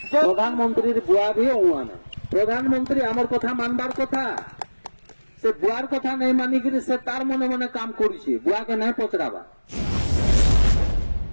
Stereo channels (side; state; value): both; inverted; correlation -1.00